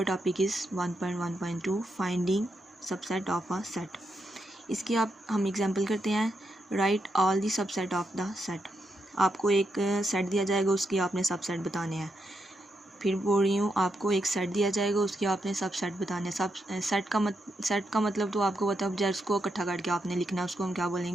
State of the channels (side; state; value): both; normal; correlation 0.82